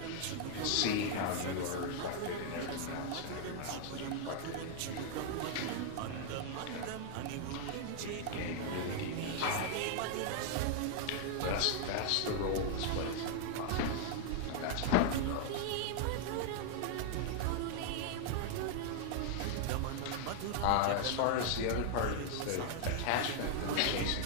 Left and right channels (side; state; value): both; different; correlation 0.00